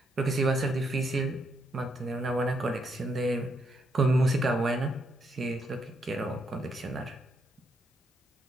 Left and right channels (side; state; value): both; normal; correlation 0.76